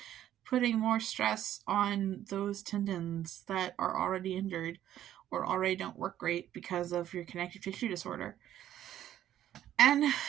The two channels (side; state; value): left; quieter; 11.8 dB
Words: putting more stress on those tendons that are already injured or already don't work great because of your connective tissue disorder. And